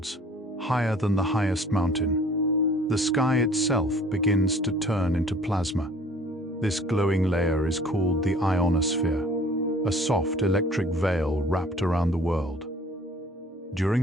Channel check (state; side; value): normal; both; correlation 0.52